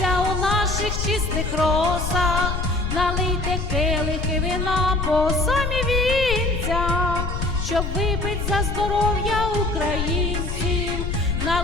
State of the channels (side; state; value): left; noise; rumble, 3 dB below the sound